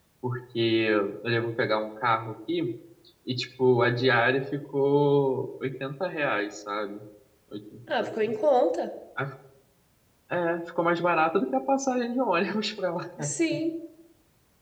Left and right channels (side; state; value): both; identical; correlation 1.00